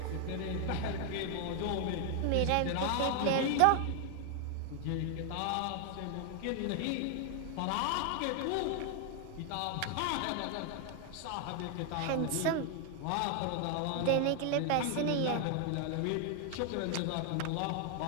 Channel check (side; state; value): both; different; correlation 0.00